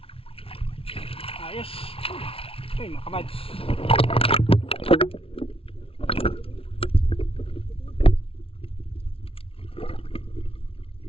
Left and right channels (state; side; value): late; right; 0.26 ms